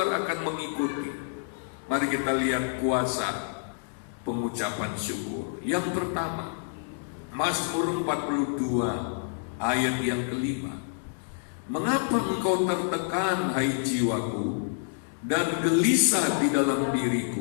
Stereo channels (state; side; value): silent; right; digital silence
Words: akan mengikuti. Mari kita lihat kuasa pengucapan syukur. Yang pertama, Mazmur 42 ayat yang kelima. Mengapa engkau tertekan, hai jiwaku, dan gelisah di dalam